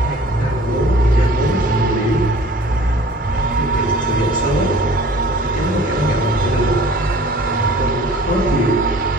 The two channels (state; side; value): normal; both; correlation 0.48